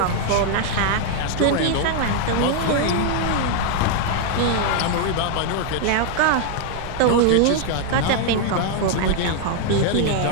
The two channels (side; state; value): both; different; correlation 0.00